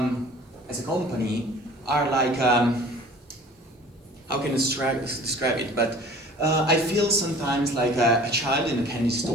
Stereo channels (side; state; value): both; normal; correlation 0.47